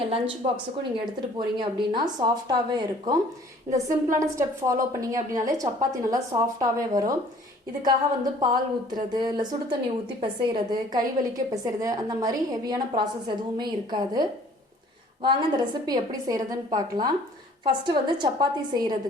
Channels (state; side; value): normal; both; correlation 0.54